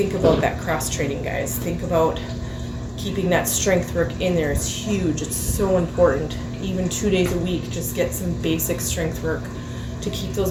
about that cross training, guys. Think about keeping that strength work in there. It's huge. It's so important. Even 2 days a week, just get some basic strength work to keep those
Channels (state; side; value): identical; both; correlation 1.00